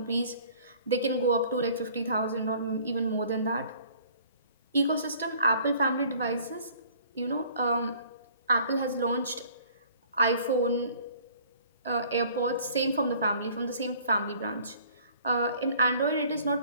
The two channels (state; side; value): inverted; both; correlation -0.54